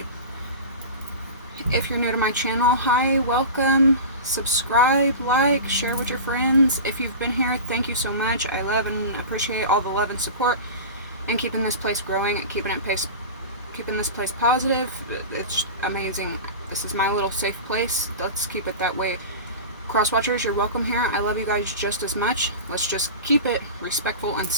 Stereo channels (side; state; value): both; inverted; correlation -0.31